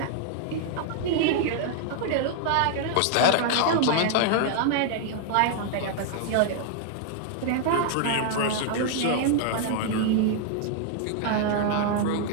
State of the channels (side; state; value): both; different; correlation 0.00